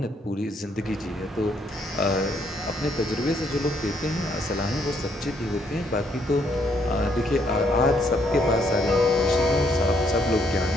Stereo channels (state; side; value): normal; both; correlation 0.71